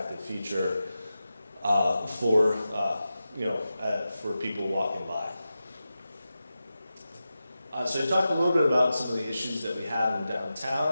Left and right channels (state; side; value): inverted; both; correlation -0.92